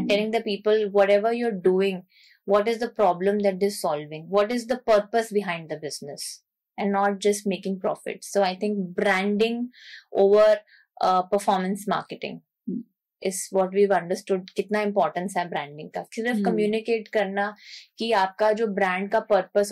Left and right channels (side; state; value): both; identical; correlation 1.00